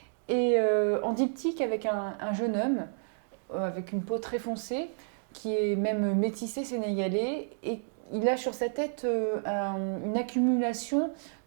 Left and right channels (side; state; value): left; silent; digital silence